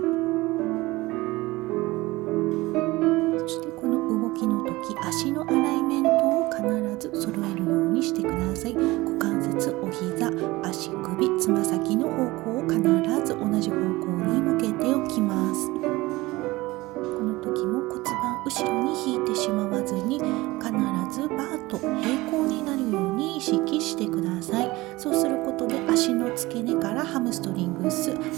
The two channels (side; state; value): left; quieter; 20.3 dB